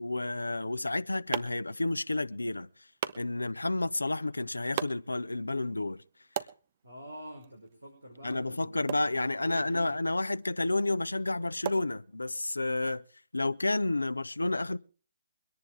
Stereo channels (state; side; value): inverted; both; correlation -0.95